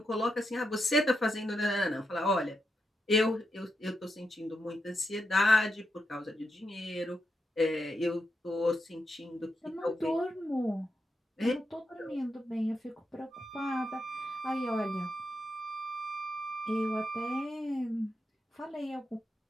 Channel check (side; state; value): both; normal; correlation 0.85